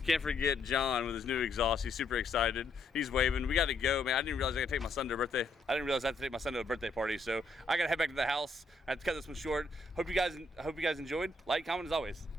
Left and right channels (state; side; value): quieter; right; 3.0 dB